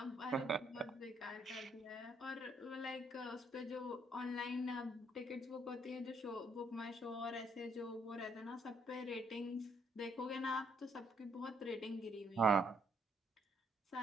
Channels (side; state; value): both; normal; correlation 0.70